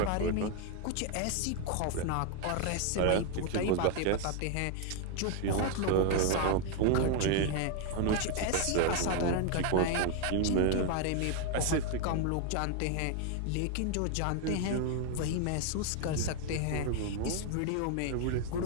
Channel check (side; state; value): both; different; correlation 0.00